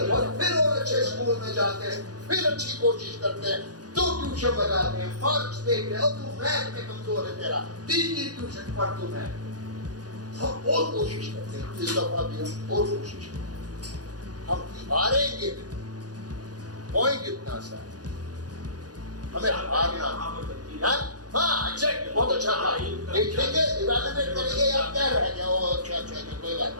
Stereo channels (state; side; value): late; left; 0.68 ms